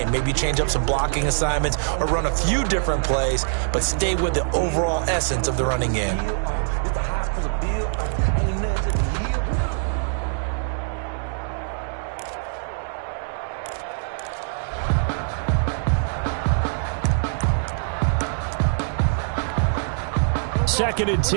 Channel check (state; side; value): silent; left; digital silence